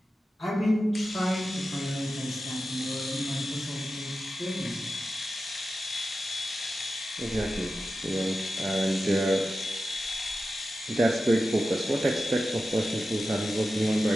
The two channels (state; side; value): normal; both; correlation 0.92